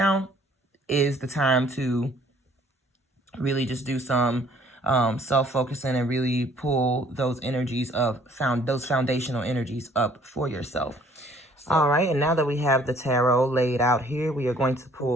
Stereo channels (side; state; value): both; normal; correlation 0.59